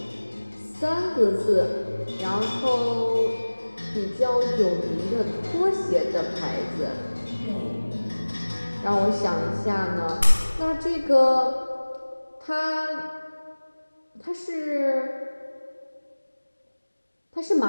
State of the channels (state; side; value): inverted; both; correlation -1.00